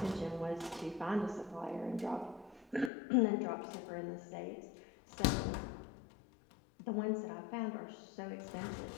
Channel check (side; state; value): right; drops out; at 2.9 s